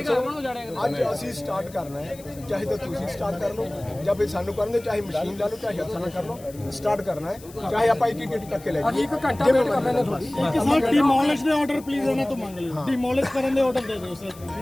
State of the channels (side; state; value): left; noise; hiss, 21 dB below the sound